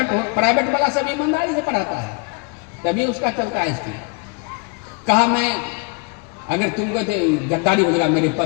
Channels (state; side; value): quieter; right; 33.1 dB